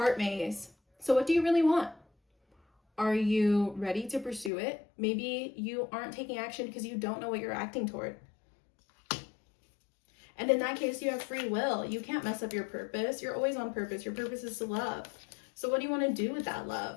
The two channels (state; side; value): drops out; right; at 4.5 s